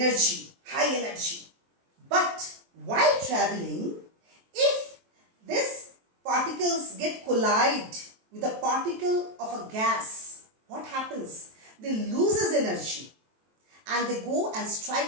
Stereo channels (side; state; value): left; late; 23 ms